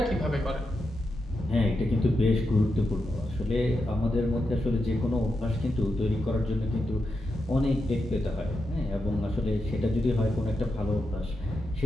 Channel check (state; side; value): normal; both; correlation 0.87